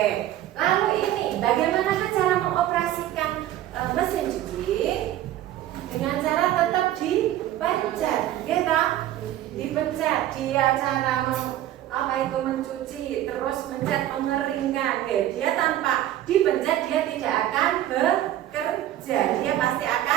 Lalu ini bagaimana cara mengoperasikan mesin cuci? Dengan cara tetap dipencet, gitu. Dipencet. Dia cara mencuci, terus mencet mengeringkan. Dia tanpa dipencet dia tidak akan bekerja. Dia pasti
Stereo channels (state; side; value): quieter; left; 13.1 dB